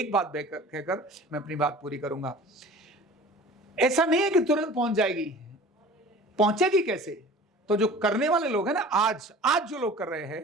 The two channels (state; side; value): normal; both; correlation 0.43